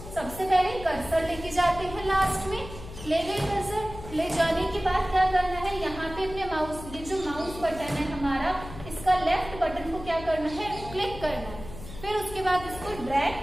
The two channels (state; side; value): noise; left; hum, 13 dB below the sound